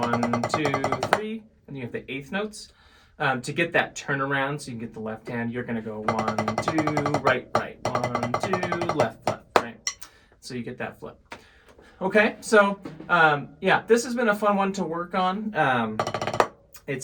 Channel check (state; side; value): identical; both; correlation 1.00